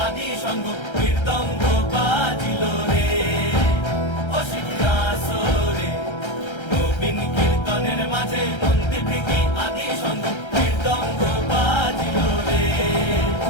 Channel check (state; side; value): late; right; 1.3 ms